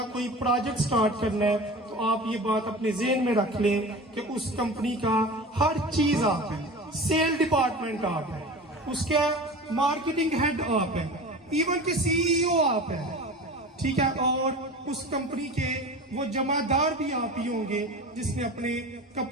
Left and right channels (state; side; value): normal; both; correlation 0.34